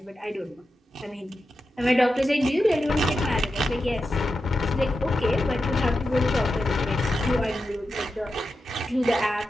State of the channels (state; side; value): normal; both; correlation 0.90